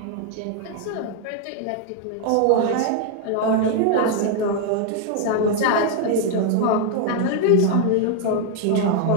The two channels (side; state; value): both; different; correlation 0.00